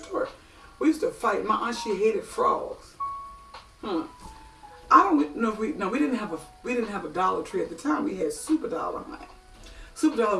We used to fight. My aunt, she hated frogs. don't know if we didn't have a Dollar Tree at the time. We had Super Dollar, honey. Super Dollar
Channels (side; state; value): both; identical; correlation 1.00